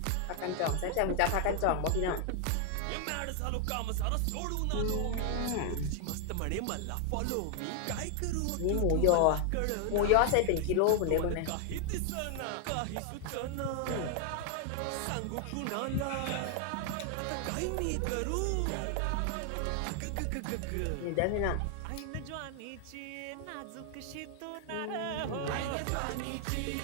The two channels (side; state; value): both; different; correlation 0.00